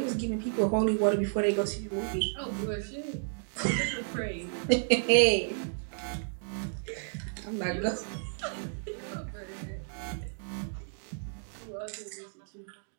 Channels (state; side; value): silent; left; digital silence